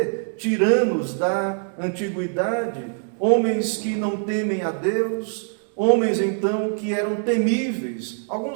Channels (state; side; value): silent; left; 59 dB below the other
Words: tiranos da antiguidade, homens que não temem a Deus, homens então que eram temíveis.